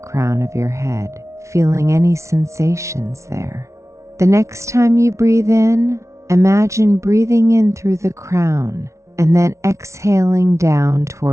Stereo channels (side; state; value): left; late; 0.14 ms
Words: of your head, feeling any sensations there. The next time you breathe in, imagine breathing in through the crown and then exhaling down